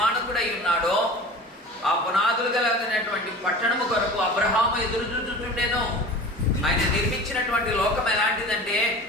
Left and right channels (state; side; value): normal; both; correlation 0.38